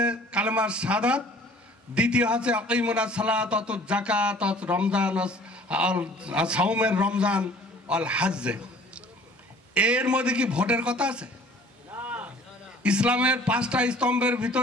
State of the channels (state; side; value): normal; both; correlation 0.51